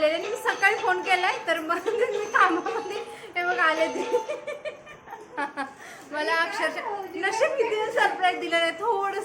मी सकाळी फोन केलाय, तर मग मी कामामध्ये हे बघ आले ते. मला अक्षरशः नशीब किती सरप्राईज दिलं नाही,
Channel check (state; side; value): identical; both; correlation 1.00